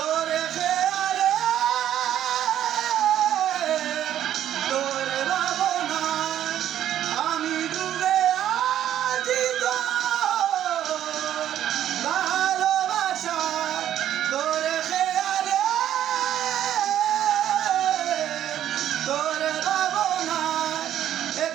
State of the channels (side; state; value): left; quieter; 11.2 dB